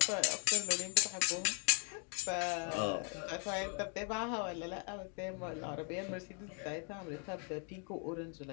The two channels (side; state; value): right; quieter; 38.1 dB